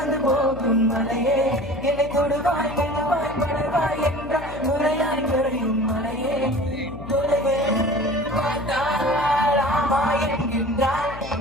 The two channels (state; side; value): noise; left; hum, 13 dB below the sound